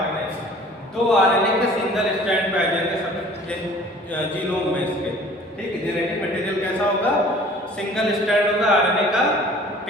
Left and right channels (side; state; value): both; normal; correlation 0.49